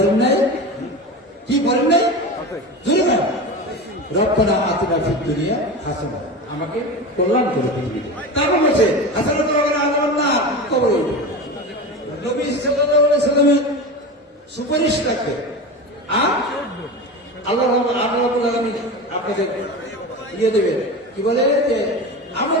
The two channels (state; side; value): normal; both; correlation 0.27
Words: নাই? কি বলেন নাই? জুড়ে না, রব্বানা আতিনা ফিদ দুনিয়া হাসানা, আমাকে কল্যাণ করে পৃথিবীতে। তারপর বলছে হাসানা তো আল্লাহ না কবর নবী সাল্লাল্লাহু আলাইহি সাল্লামের সুপারিশ রাখবে। আর আল্লাহ রাব্বুল আলামিন আপনাদের দিয়ে দেবে, কি বলে যে আমল